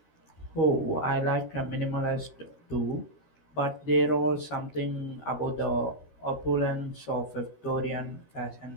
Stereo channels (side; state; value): right; late; 13 ms